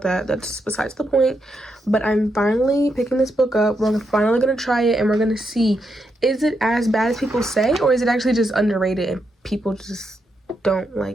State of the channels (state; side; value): normal; both; correlation 0.82